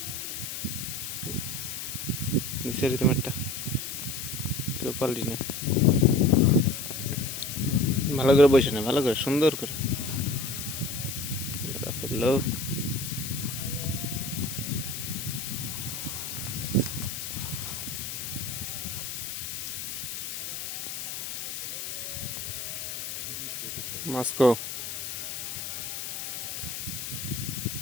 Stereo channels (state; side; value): noise; left; hiss, 5 dB below the sound